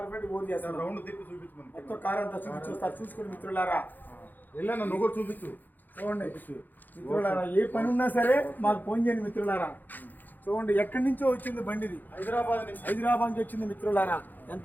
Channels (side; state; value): right; late; 0.086 ms